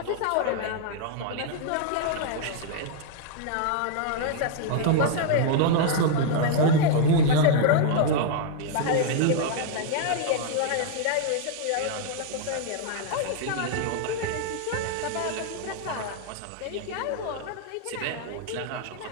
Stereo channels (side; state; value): both; different; correlation -0.01